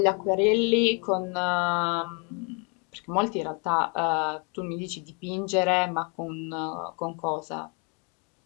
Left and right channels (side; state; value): right; quieter; 35.4 dB